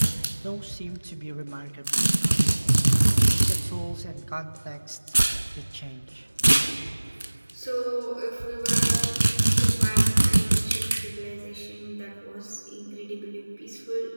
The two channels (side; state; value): both; inverted; correlation -1.00